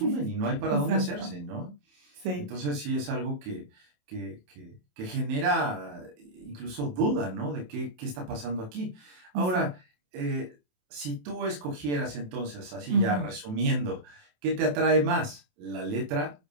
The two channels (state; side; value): late; left; 27 ms